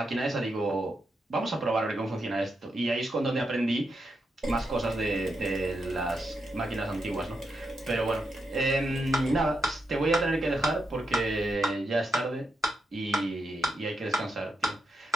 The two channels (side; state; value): both; normal; correlation 0.84